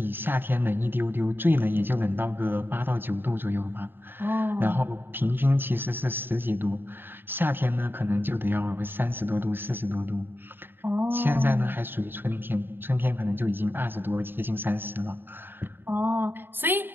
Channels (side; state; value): left; late; 0.099 ms